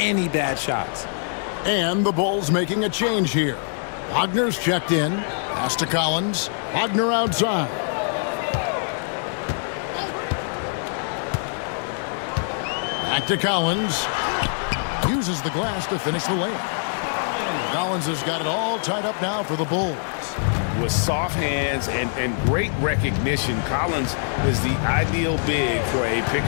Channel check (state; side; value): silent; right; digital silence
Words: bad shots. And the Bulls making a change here. Wagner's checked in. Pass to Collins. Wagner outside. Back to Collins. Uses the glass to finish the layup. Collins has got it all tied up now for the Bulls. With soft hands and great recognition, Collins is the ideal big for a pick